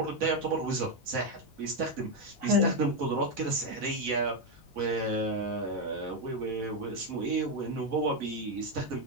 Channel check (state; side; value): normal; both; correlation 0.05